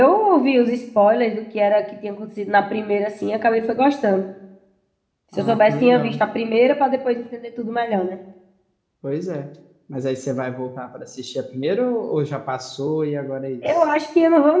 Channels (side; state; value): both; identical; correlation 1.00